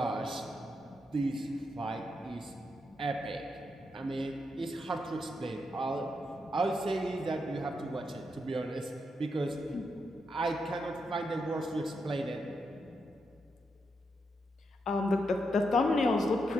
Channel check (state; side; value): normal; both; correlation 0.83